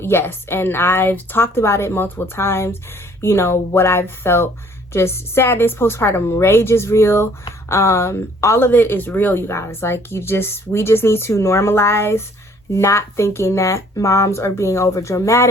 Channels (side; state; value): both; normal; correlation 0.59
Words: and I've talked about it multiple times. You know, what I've felt, just sadness, postpartum rage is real. All of it is real, you guys. Like, we just need to normalize not thinking that moms are being over